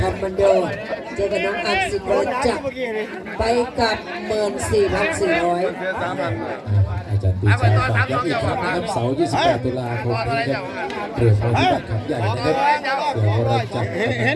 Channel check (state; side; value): identical; both; correlation 1.00